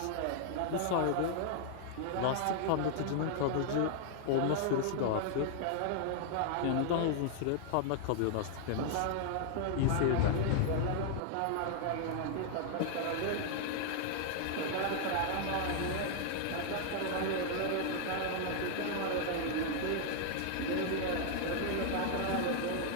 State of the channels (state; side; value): different; both; correlation -0.01